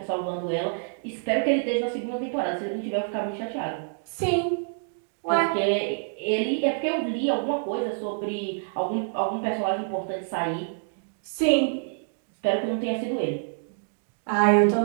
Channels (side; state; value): left; silent; digital silence